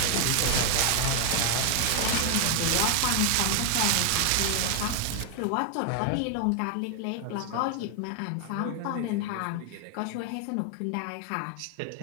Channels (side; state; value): both; different; correlation 0.00